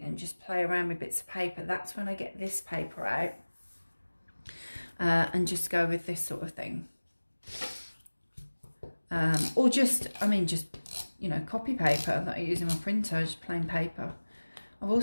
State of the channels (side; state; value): both; inverted; correlation -1.00